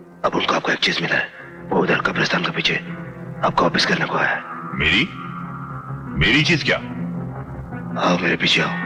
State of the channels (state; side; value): identical; both; correlation 1.00